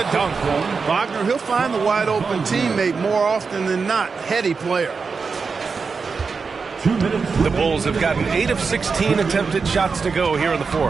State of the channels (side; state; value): left; quieter; 5.0 dB